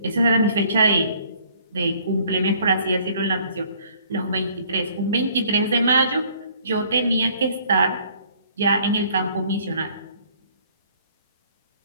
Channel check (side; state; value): both; inverted; correlation -0.58